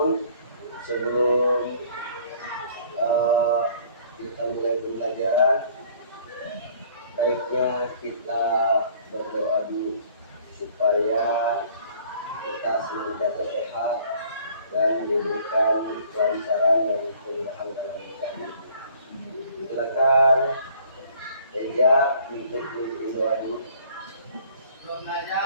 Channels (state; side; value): inverted; both; correlation -0.55